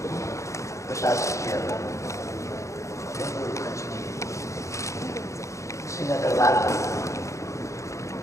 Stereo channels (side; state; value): right; late; 0.15 ms